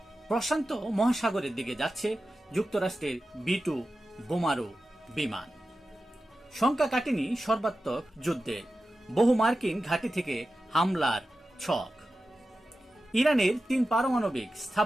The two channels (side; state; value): both; normal; correlation 0.93